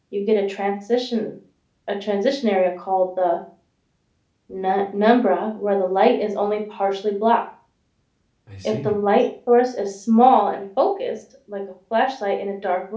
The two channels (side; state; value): both; identical; correlation 1.00